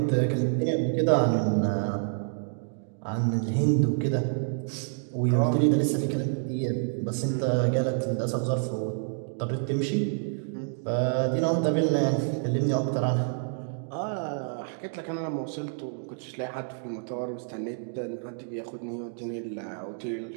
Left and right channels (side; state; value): left; silent; digital silence